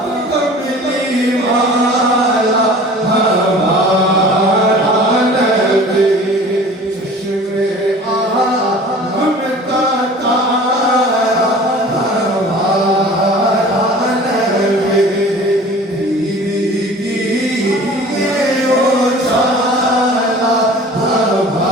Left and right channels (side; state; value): both; normal; correlation 0.44